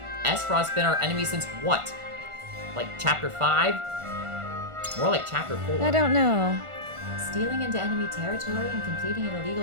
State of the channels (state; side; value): late; left; 1.4 ms